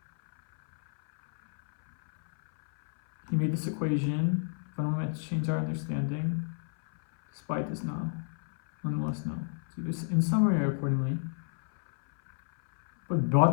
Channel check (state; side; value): silent; right; 58 dB below the other